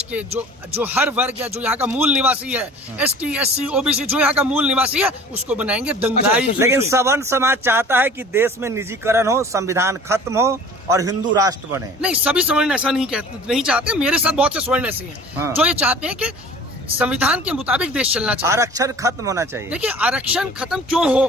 के जो हर वर्ग या जो यहाँ का मूल निवासी है, ST, SC, OBC, जो यहाँ का मूल निवासी है, उसको बनाएंगे दंगाई। लेकिन सवर्ण समाज चाहता है कि देश में निजीकरण हो, संविधान खत्म हो और हिंदू राष्ट्र बने। नहीं, सभी सवर्ण ऐसा नहीं चाहते। मेरे साथ बहुत से स्वर्ण ऐसे हैं जो ये चाहते हैं कि संविधान के मुताबिक देश चलना चाहिए। आरक्षण खत्म होना चाहिए। देखिए, आरक्षण खत्म क्यों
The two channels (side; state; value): both; normal; correlation 0.45